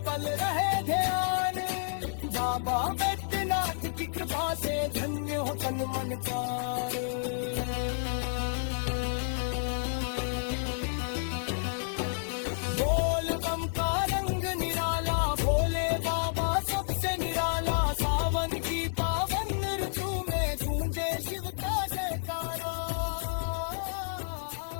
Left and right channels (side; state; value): right; silent; digital silence